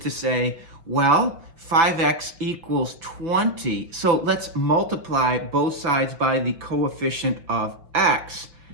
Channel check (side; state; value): left; late; 5.7 ms